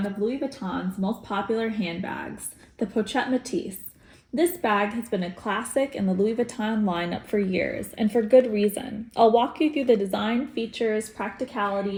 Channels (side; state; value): both; identical; correlation 1.00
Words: of Louis Vuitton's most popular handbags, the Pochette Métis. This bag has been a classic in the Louis Vuitton lineup for years, and for good reason. I'll walk you through the design, features, practicality,